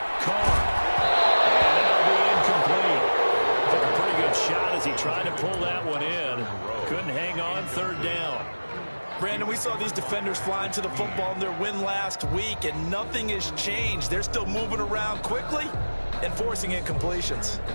Carr. And that'll be incomplete. Took a pretty good shot as he tried to pull that one in. Couldn't hang on 3rd down. Brandon, we saw these defenders flying to the football in their win last week, and nothing has changed. They're still moving around quickly and forcing incompletions.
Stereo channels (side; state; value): both; inverted; correlation -1.00